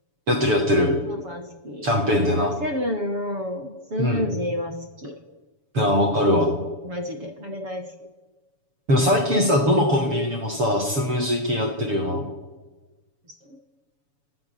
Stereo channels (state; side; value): late; left; 7.1 ms